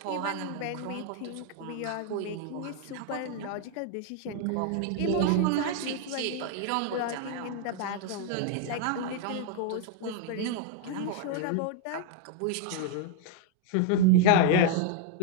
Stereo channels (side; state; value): both; different; correlation 0.00